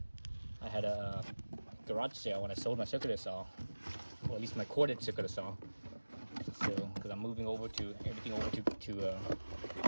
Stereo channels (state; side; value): inverted; both; correlation -1.00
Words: I had a garage sale when I sold my circular saw, or at least my corded circular saw. So because I'm moving over to everything over